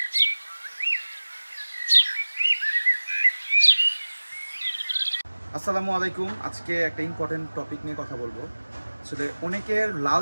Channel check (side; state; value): both; inverted; correlation -1.00